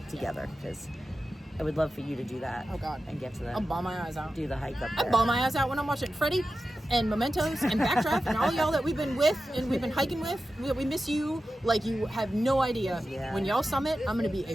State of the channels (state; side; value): normal; both; correlation 0.92